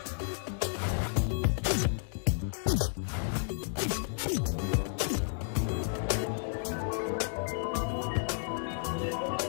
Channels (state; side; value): silent; right; digital silence